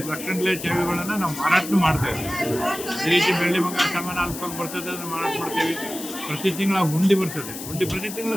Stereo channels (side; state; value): left; noise; hiss, 10 dB below the sound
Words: ಲಕ್ಷಗಟ್ಟಲೆ ಚಾವಿಗಳನ್ನು ನಾವು ಮಾರಾಟ ಮಾಡ್ತಾ ಇದ್ದೀವಿ. ಈ ರೀತಿ ಬೆಳ್ಳಿ ಬಂಗಾರ ಸಾಮಾನು ಅಲ್ಪ ಬರ್ತದೆ, ಅದನ್ನು ಮಾರಾಟ ಮಾಡ್ತೀವಿ. ಪ್ರತಿ ತಿಂಗಳ ಹುಂಡಿ ಬರ್ತದೆ, ಹುಂಡಿ ಪ್ರತಿ